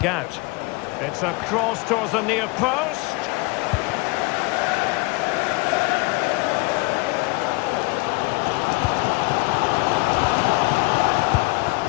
out? It's a cross towards the near post.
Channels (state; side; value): quieter; right; 25.5 dB